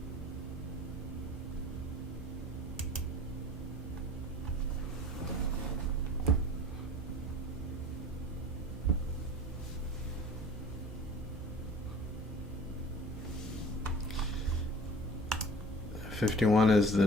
$51 is the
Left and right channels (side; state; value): both; normal; correlation 0.44